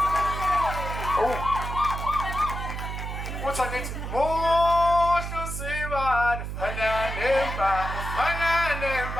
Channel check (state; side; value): noise; right; hum, 6 dB below the sound